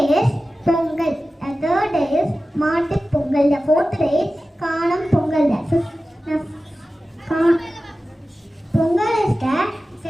is Pongal. The third day is Maattu Pongal. The fourth day is Kanam Pongal. Pongal is the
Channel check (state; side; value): normal; both; correlation 0.95